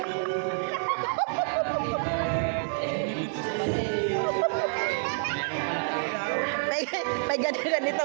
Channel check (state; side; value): silent; left; digital silence